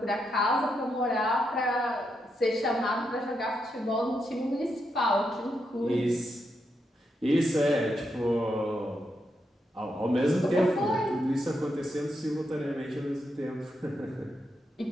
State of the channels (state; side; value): normal; both; correlation 0.82